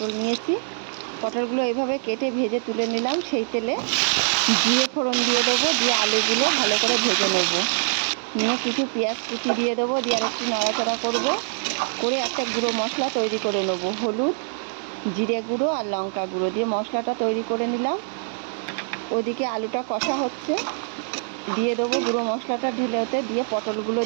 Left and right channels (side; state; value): left; silent; digital silence